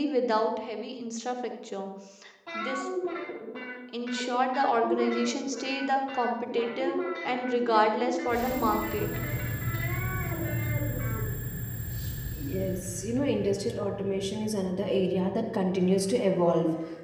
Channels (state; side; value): identical; both; correlation 1.00